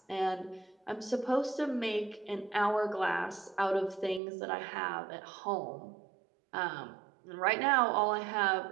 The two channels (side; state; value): left; drops out; at 4.2 s